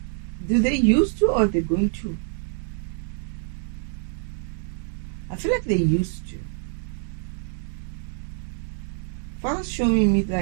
do they used to, or they're going to? I feel like they used to. Father's showing me,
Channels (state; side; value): silent; left; 61 dB below the other